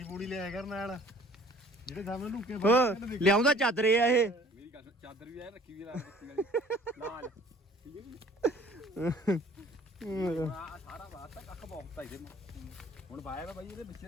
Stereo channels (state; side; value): normal; both; correlation 0.52